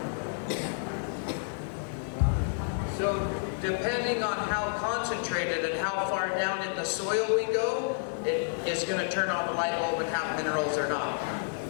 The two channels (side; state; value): right; silent; digital silence